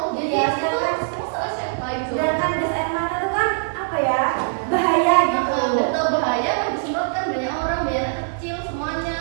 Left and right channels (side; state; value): left; silent; digital silence